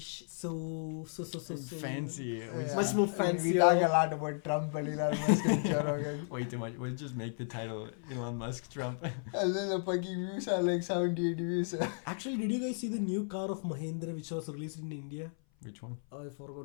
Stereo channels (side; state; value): right; silent; 55 dB below the other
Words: so Fancy. Yeah. much more I mean, fancy. we talk a lot about Trump and Elon Musk and Joe Rogan. Way too much. We'll just make the title Elon Musk Trump. And then the fucking views are like 78 views. Actually, did you guys see the new car of Mahindra which was released in India? Which one? I